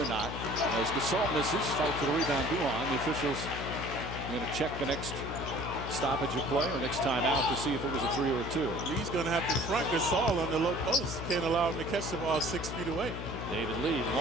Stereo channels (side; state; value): left; noise; hum, 7 dB below the sound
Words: or not. As Gasol misses, fight for the rebound, Duhan. The officials are going to check the next stoppage of play or next time out to see if it was a three or a two. Lee's going to have to front Gasol on the low post. Can't allow him to catch the ball 6 feet away. David Lee,